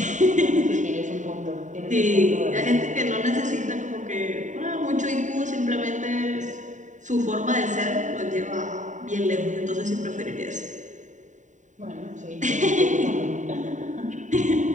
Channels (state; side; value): late; left; 0.36 ms